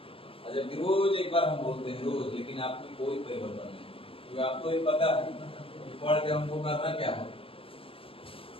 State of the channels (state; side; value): late; right; 0.27 ms